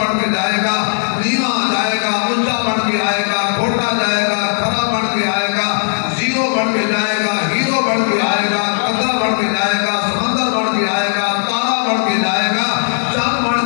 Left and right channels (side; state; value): right; silent; digital silence